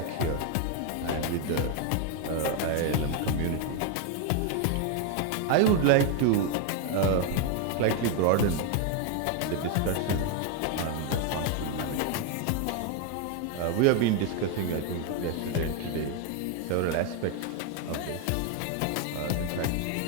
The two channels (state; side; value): different; both; correlation 0.01